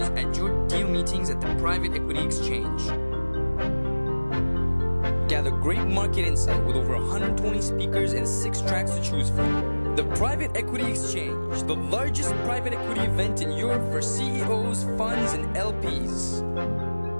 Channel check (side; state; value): both; inverted; correlation -1.00